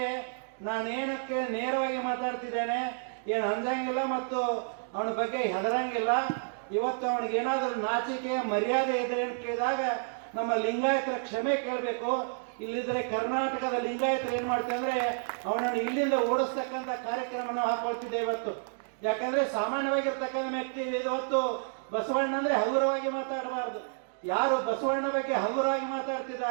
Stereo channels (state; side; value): silent; left; digital silence